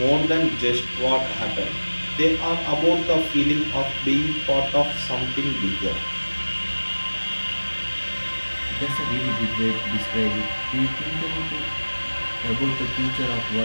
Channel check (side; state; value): both; inverted; correlation -1.00